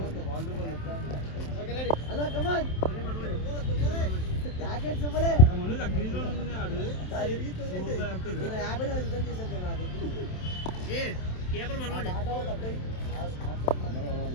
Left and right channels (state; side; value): late; right; 27 ms